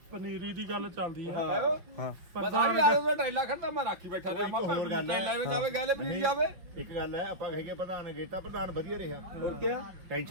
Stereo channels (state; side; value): late; left; 5.5 ms